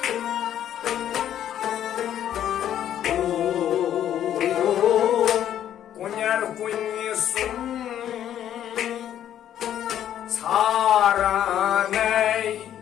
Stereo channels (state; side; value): quieter; right; 10.8 dB